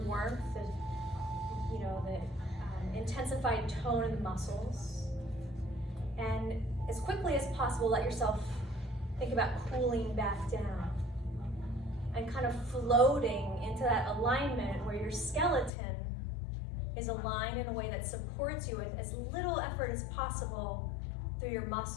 the intensified tone of the muscles. And as quickly as possible, let yourself think about cooling back down and kind of floating into that alignment where your skeleton is aligned in a way that supports you with as little effort as possible through your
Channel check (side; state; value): right; drops out; at 15.7 s